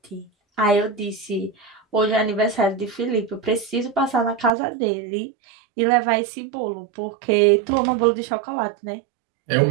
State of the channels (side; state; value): left; drops out; at 4.5 s